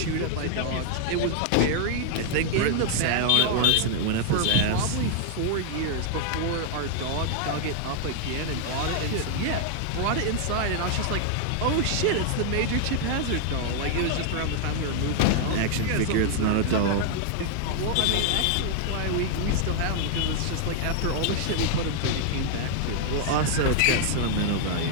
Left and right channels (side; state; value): both; different; correlation 0.00